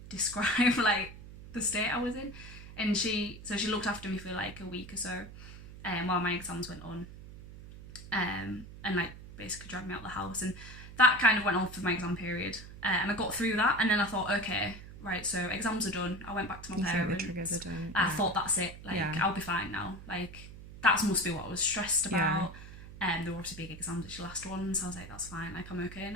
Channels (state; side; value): noise; right; hum, 15 dB below the sound